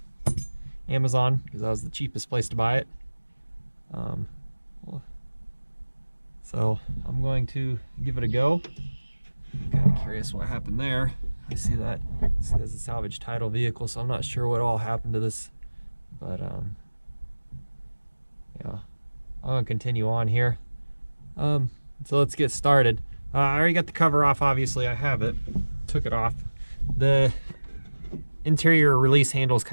Amazon because that was the cheapest place to buy it. So I'm going to give it a go. I'm kind of curious what happened there. I see that this is a salvage title vehicle, so I'm not sure what all happened to this, but yeah, I'm gonna continue on here. So let's get started. I already got the cover off, obviously. I have it. Took it off. The interior release handle is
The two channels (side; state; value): both; inverted; correlation -1.00